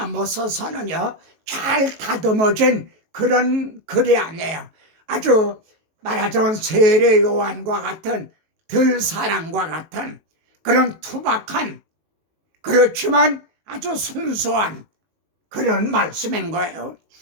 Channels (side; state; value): left; late; 18 ms